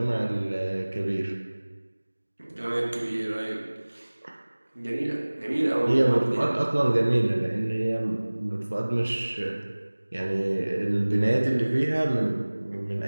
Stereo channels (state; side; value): inverted; both; correlation -1.00